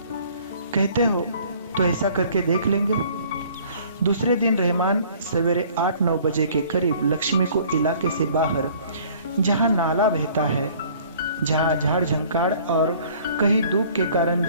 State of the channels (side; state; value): both; inverted; correlation -0.54